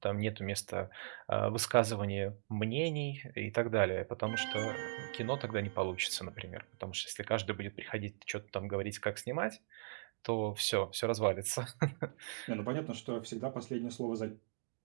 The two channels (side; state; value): left; silent; digital silence